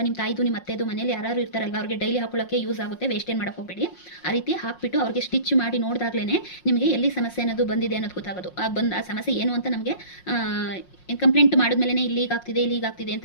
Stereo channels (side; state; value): right; late; 5.6 ms